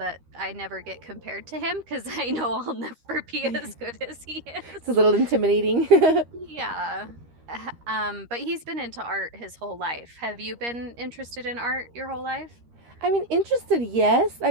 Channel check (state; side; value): late; left; 13 ms